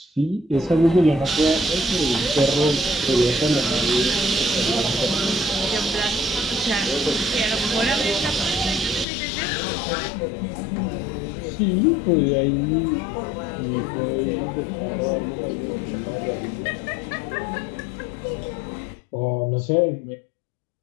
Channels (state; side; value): drops out; right; at 9.1 s